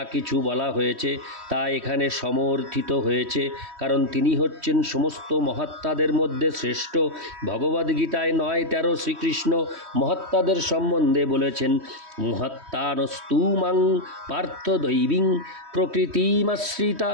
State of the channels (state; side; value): late; left; 3.1 ms